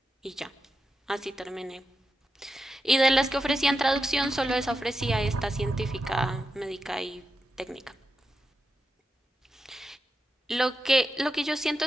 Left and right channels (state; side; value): normal; both; correlation 0.87